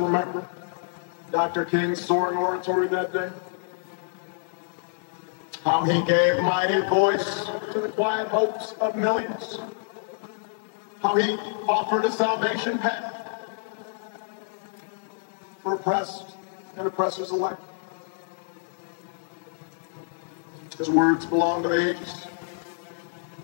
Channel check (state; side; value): silent; right; digital silence